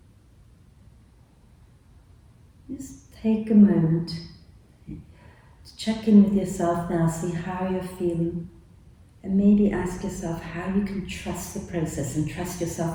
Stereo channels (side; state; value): both; identical; correlation 1.00